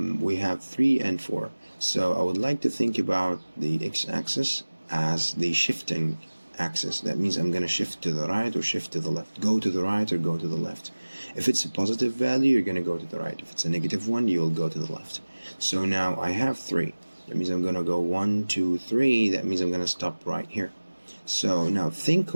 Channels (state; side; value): inverted; both; correlation -1.00